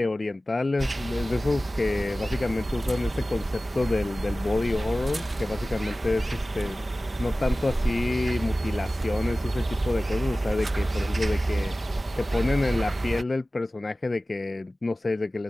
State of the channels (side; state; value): both; normal; correlation 0.96